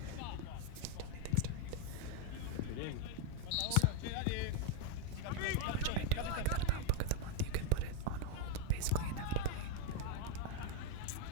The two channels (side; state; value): both; different; correlation 0.02